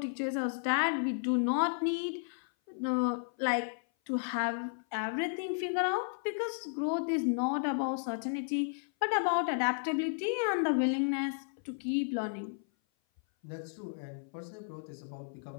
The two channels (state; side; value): silent; right; 55 dB below the other